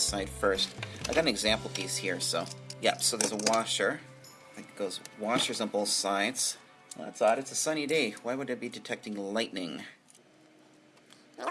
side first. I got an example piece here, so yep. So there's a washer. I think it goes washers on both sides. Well, that's odd. It's a sunny day. Why would it be detecting lightning?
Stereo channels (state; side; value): identical; both; correlation 1.00